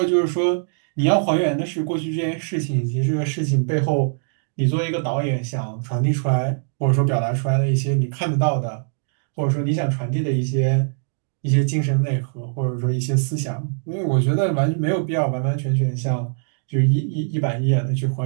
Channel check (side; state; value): left; silent; digital silence